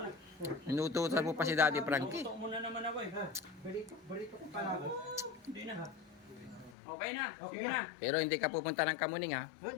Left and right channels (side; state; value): right; drops out; at 6.8 s